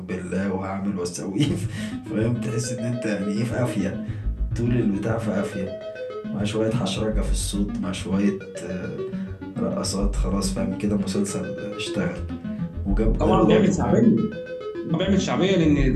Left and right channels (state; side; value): identical; both; correlation 1.00